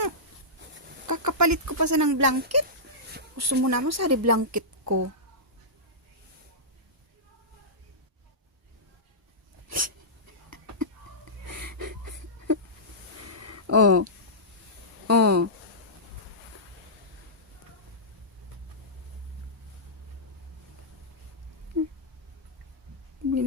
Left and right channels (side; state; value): both; normal; correlation -0.17